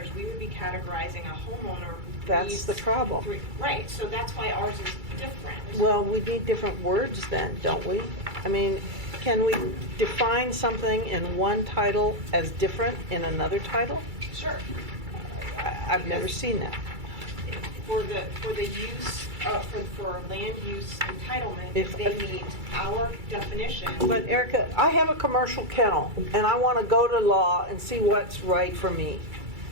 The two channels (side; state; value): left; late; 2.3 ms